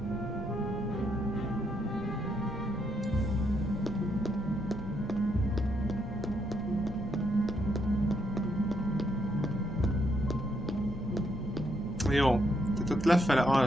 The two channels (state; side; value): normal; both; correlation 0.76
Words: Jó, tehát ott lefele